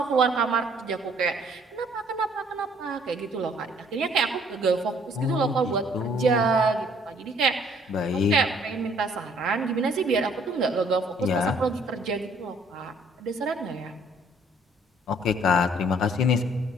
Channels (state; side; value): normal; both; correlation 0.60